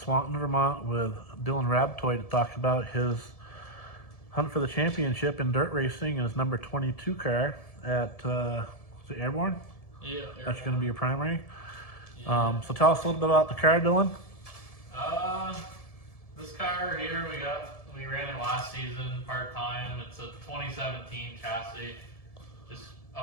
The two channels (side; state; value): right; late; 1.7 ms